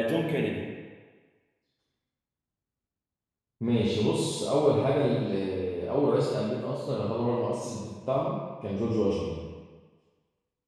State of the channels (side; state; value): both; identical; correlation 1.00